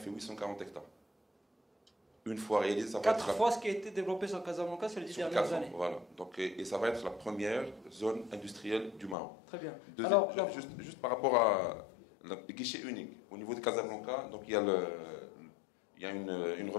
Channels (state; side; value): drops out; right; at 9.2 s